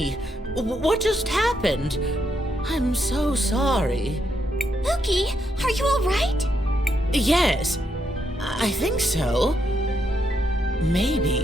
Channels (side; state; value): both; normal; correlation 0.79